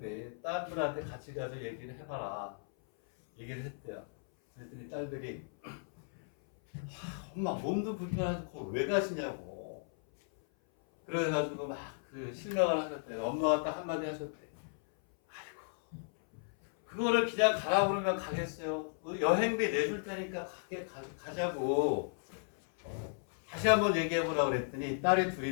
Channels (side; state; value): right; silent; 54 dB below the other